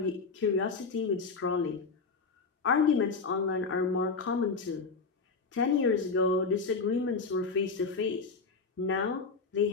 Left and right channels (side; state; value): right; quieter; 4.5 dB